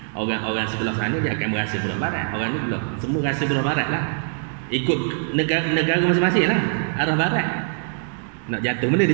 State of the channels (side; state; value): left; silent; 64 dB below the other